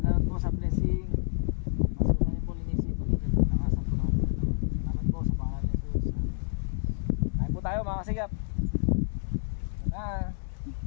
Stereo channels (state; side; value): silent; right; digital silence